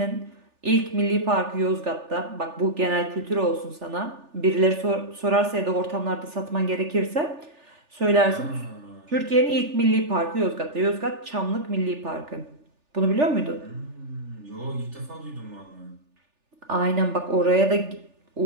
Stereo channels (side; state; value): left; late; 3.4 ms